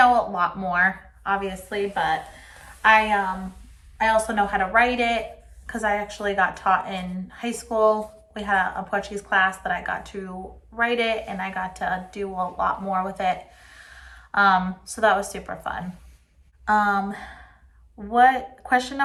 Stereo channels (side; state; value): both; identical; correlation 1.00